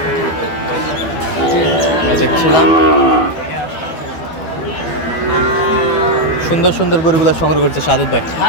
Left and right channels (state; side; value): late; right; 12 ms